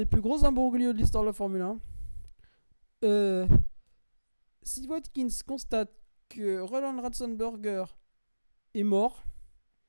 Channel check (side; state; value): both; inverted; correlation -1.00